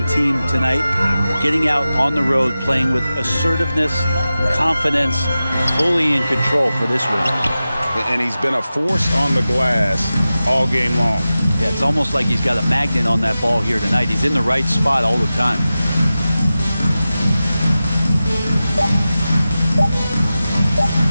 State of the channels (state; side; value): inverted; both; correlation -0.94